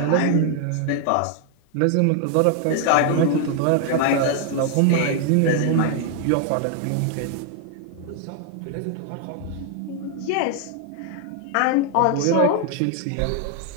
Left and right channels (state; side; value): different; both; correlation 0.00